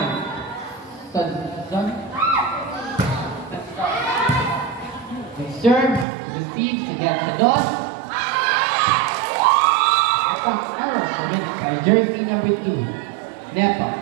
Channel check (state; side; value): drops out; left; at 6.1 s